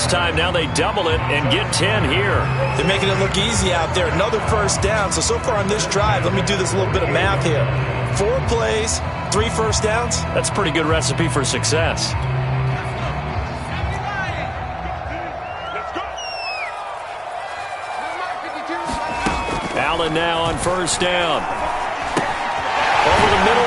time. Now they double it and get 10 here. They're making it look easy out there. Another 1st down. So far on this drive, let me do this little bit of math here. 4 plays, 3 1st downs. That's a pretty good recipe for success. Allen now on 1st down. Over the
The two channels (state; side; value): identical; both; correlation 1.00